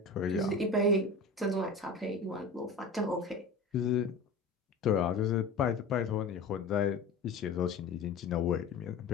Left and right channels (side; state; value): right; quieter; 3.7 dB